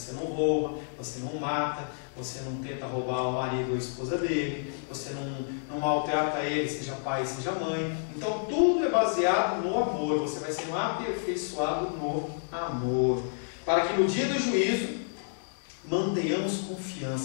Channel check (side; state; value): right; silent; digital silence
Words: não rouba, você não mata, você não tenta roubar o marido ou a esposa dele, você não maltrata ele, seja pai, seja mãe. Então tudo é baseado no amor, você vai sendo aperfeiçoado no amor. Para que no dia do juízo mantenhamos